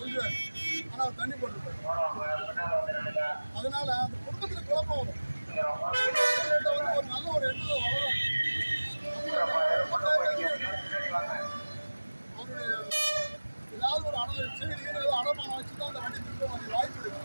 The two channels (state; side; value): inverted; both; correlation -1.00